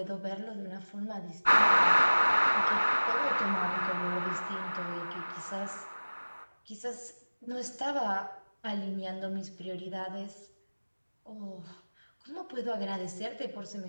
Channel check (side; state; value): both; inverted; correlation -1.00